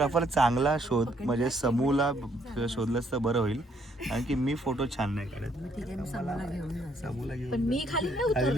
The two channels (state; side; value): normal; both; correlation 0.69